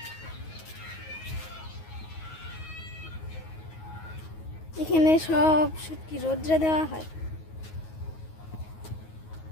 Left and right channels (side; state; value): right; late; 9.4 ms